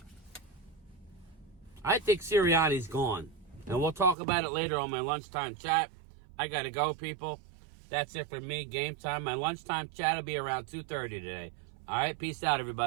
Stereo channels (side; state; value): left; drops out; at 4.2 s